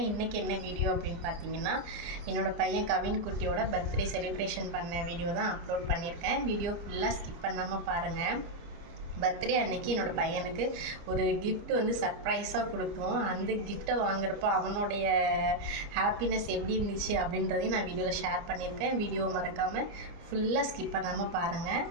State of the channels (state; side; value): late; left; 29 ms